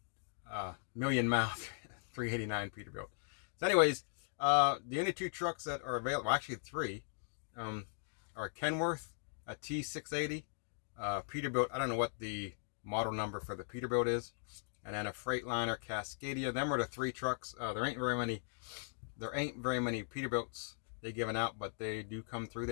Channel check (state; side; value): silent; right; digital silence